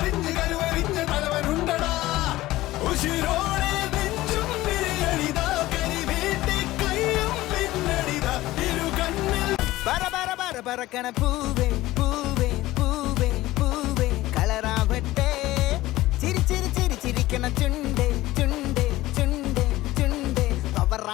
കരുവറിഞ്ഞ് തലവനുണ്ടടാ ഉശിരോടെ നെഞ്ചും വിരിയണിതാ കരി വീട്ടി കയ്യും പിന്നണിതാ ഇരു കണ്ണിൽ പറക്കണ പൂവേ പൂവേ പൂവേ പൂവേ കളറാവട്ടെ ചിരി ചിരി ചിരി ചിരിക്കണ ചുണ്ടേ ചുണ്ടേ ചുണ്ടേ ചുണ്ടേ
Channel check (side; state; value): right; quieter; 17.1 dB